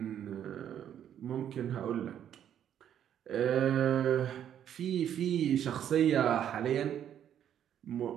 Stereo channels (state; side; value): quieter; left; 9.9 dB